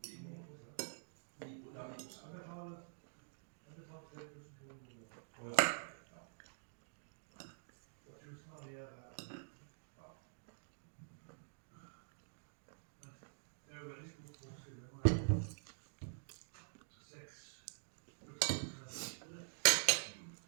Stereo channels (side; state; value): left; silent; digital silence